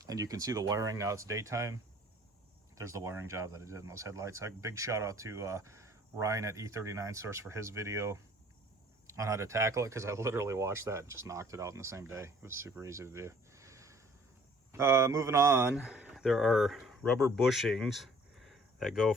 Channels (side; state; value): both; normal; correlation 0.54